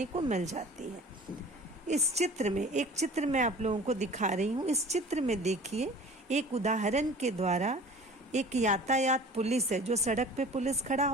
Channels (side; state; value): both; normal; correlation 0.44